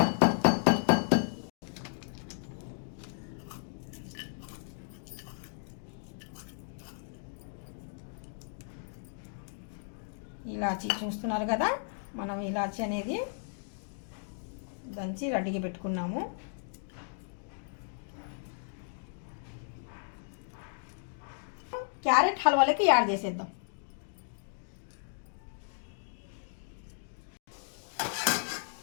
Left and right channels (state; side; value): silent; right; digital silence